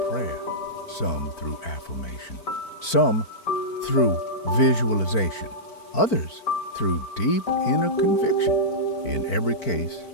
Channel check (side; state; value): right; late; 4.5 ms